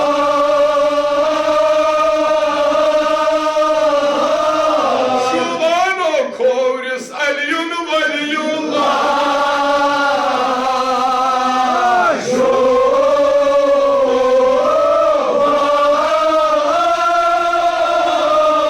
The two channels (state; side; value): identical; both; correlation 1.00